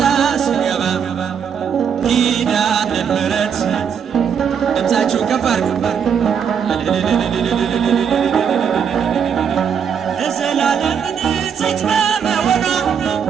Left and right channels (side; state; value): left; quieter; 7.5 dB